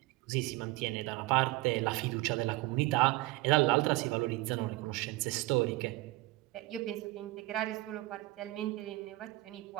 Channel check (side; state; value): left; quieter; 20.2 dB